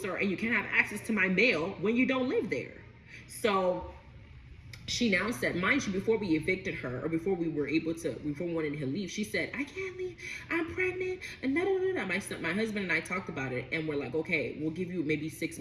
you can't have access to my mail when you don't live there. So she now said, mind you, before we evicted her, or before we wanted her to leave, she said, I can't leave, I'm pregnant, and My husband and I talked about it, and we're like, okay, we'll give you maybe 6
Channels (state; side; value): identical; both; correlation 1.00